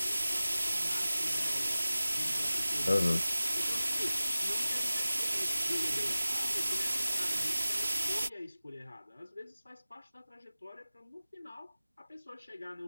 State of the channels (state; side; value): inverted; both; correlation -0.97